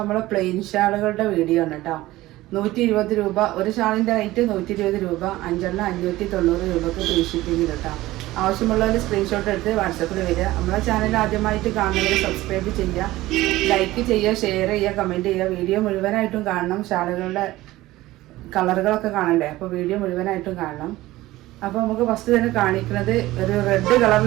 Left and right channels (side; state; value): left; quieter; 17.3 dB